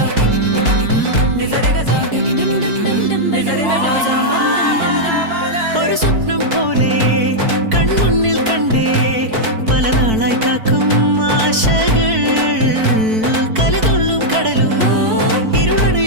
ഒരു സ്വപ്നം പോലെ കൺമുന്നിൽ കണ്ടേ പല നാളായി കാക്കും ആശകൾ കലിതുള്ളും കടലും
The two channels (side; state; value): left; late; 4.5 ms